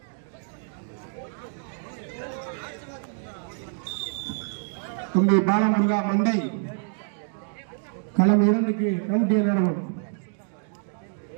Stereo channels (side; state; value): left; silent; 60 dB below the other